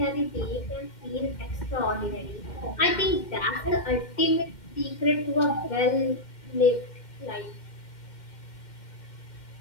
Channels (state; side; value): late; right; 2.1 ms